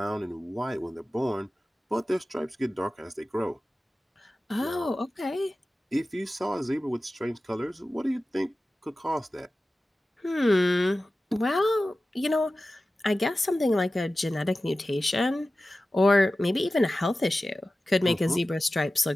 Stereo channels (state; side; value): normal; both; correlation 0.95